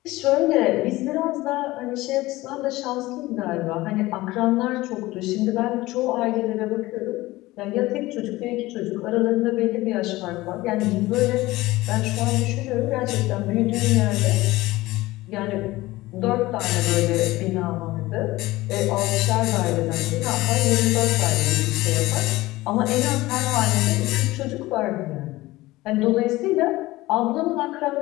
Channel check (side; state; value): right; quieter; 18.8 dB